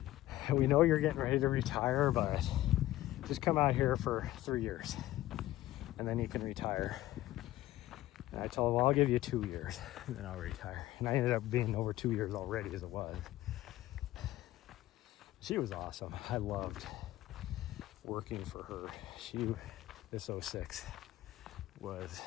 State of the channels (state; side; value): quieter; right; 15.6 dB